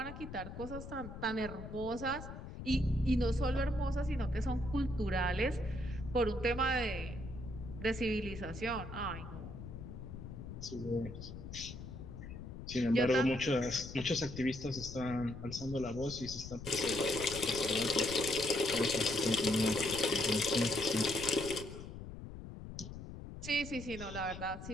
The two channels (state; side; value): noise; left; rumble, 10 dB below the sound